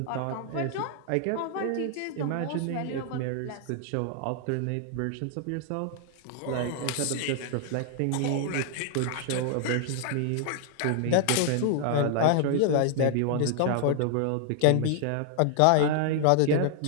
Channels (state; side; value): different; both; correlation 0.00